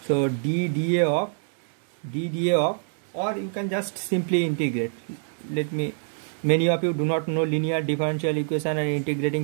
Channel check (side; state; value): left; silent; 61 dB below the other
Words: So dda of, or you can just simply integrate. Many of you do not know linear differential equation and